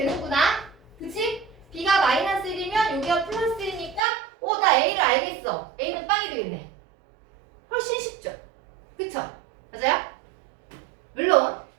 그치? b가 마이너스 1이면 여기가 플러스 1이니까 나 a를 알겠어. a는 빵이 되겠네. 훨씬 쉽죠? 그쵸? 맞아요? 물론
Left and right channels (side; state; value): left; drops out; at 4.0 s